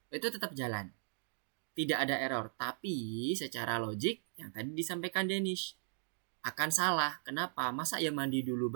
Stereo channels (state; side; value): silent; left; digital silence